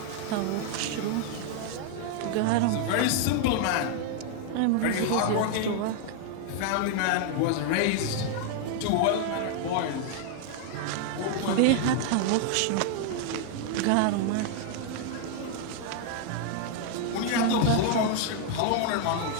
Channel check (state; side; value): different; both; correlation 0.00